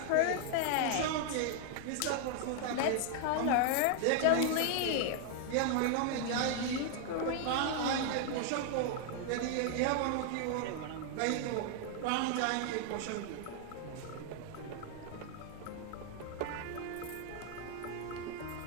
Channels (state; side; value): different; both; correlation 0.00